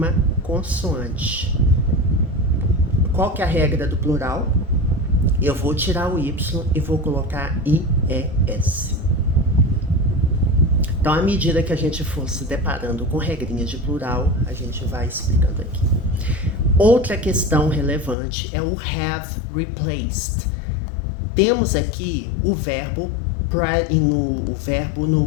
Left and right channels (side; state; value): right; drops out; at 18.2 s